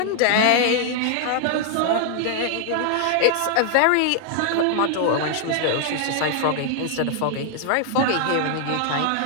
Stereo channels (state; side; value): different; both; correlation 0.00